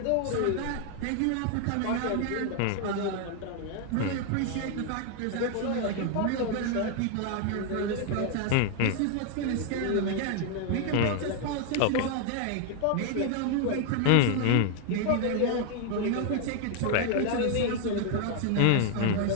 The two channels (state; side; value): different; both; correlation 0.00